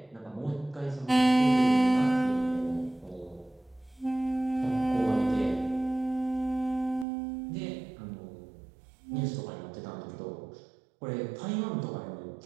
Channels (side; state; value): left; drops out; at 7.1 s